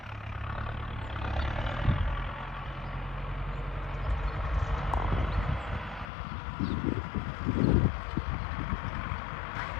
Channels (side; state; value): right; drops out; at 6.1 s